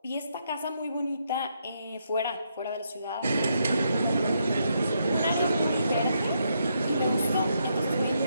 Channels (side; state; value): both; inverted; correlation -0.78